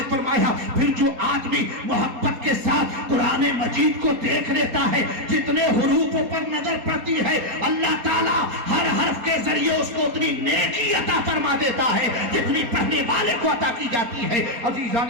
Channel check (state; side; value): late; left; 4.3 ms